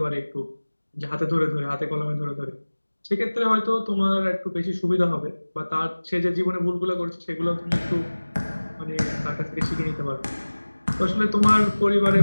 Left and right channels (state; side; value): inverted; both; correlation -1.00